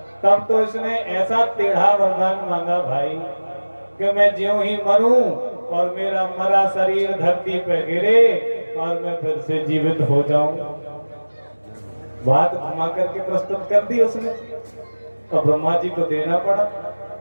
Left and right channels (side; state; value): both; inverted; correlation -1.00